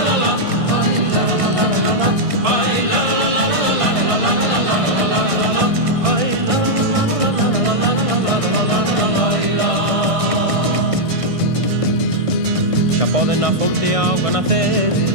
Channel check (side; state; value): left; late; 1.6 ms